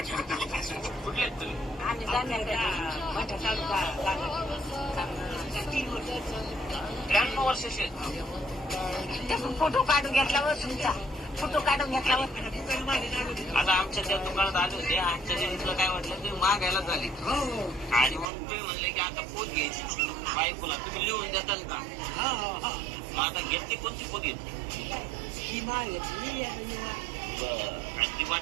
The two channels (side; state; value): left; drops out; at 18.3 s